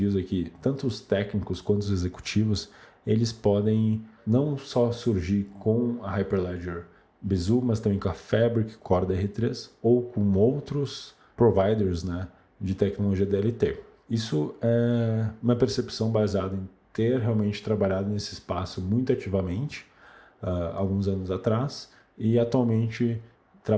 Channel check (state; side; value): identical; both; correlation 1.00